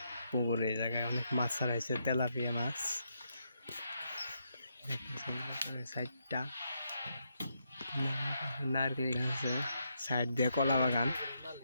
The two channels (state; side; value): inverted; both; correlation -0.79